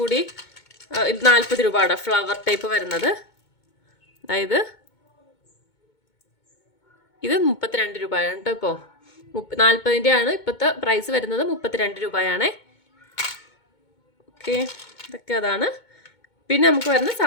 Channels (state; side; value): late; right; 2.2 ms